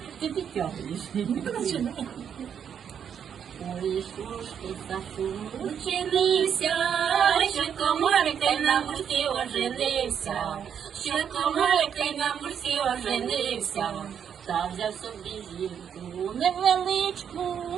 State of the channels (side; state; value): left; quieter; 8.1 dB